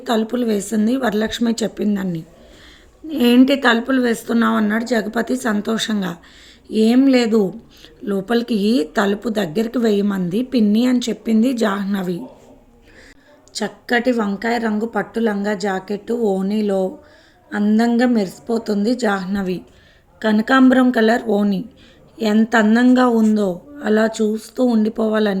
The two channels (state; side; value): identical; both; correlation 1.00